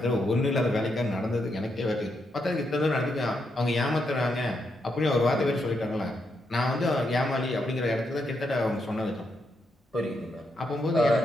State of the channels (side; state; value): both; normal; correlation 0.81